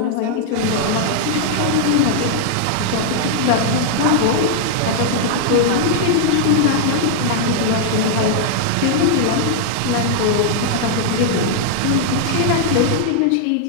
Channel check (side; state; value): both; different; correlation -0.01